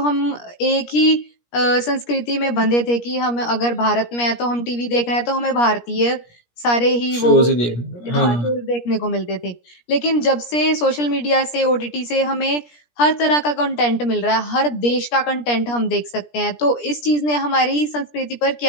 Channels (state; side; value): late; right; 17 ms